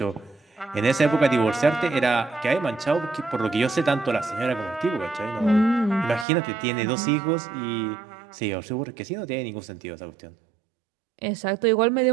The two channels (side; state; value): left; drops out; at 6.2 s